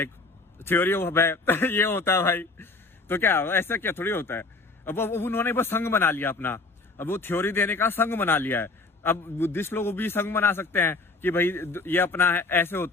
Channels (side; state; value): right; quieter; 3.6 dB